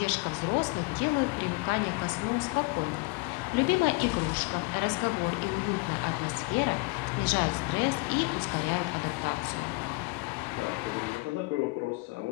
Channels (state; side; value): quieter; right; 27.2 dB